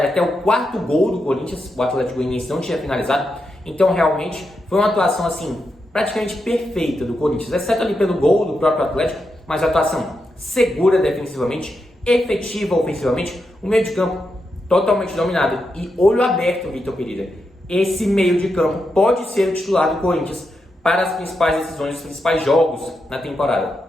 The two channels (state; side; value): normal; both; correlation 0.85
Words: até o quarto gol do Corinthians, o Atlético Goianiense não tinha finalizado. Então, realmente, foi uma atuação, assim, praticamente perfeita do Corinthians, exceto ali pelo gol do próprio Atlético, mas a atuação segura defensivamente, efetiva ofensivamente, o meio de campo totalmente dominado e olho aberto, Vitor Pereira. Esse meio de campo pode ser o titular do Corinthians para as principais decisões, os principais jogos na